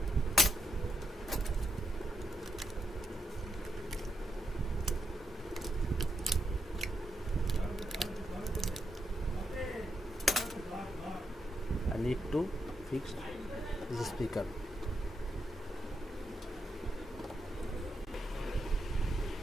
I need to fix this speaker.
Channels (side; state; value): both; normal; correlation 0.83